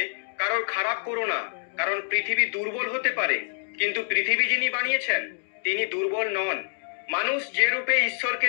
কারোর খারাপ করো না, কারণ পৃথিবী দুর্বল হতে পারে, কিন্তু পৃথিবী যিনি বানিয়েছেন তিনি দুর্বল নন। মানুষ যে রূপে ঈশ্বরকে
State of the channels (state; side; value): silent; right; digital silence